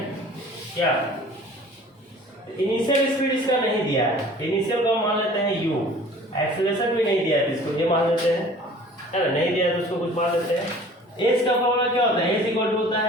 क्या? इनिशियल स्पीड इसका नहीं दिया है। इनिशियल को मान लेते हैं u, एक्सेलरेशन भी नहीं दिया है, इसको ये मान लेते हैं, है ना? नहीं दिया है तो उसको कुछ मान लेते हैं। एस का फॉर्मूला क्या होता है? एस इक्वल टू होता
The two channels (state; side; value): normal; both; correlation 0.48